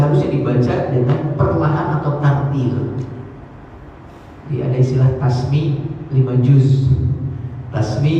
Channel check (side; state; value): both; identical; correlation 1.00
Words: dibaca dengan perlahan atau tartil. Jadi ada istilah tasmi 5 juz,